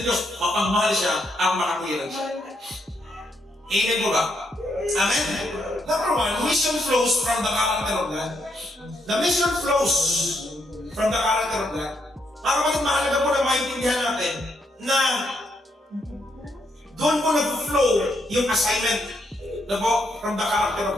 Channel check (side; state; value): both; normal; correlation 0.77